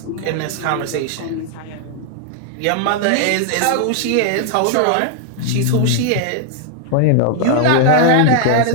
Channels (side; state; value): both; different; correlation 0.00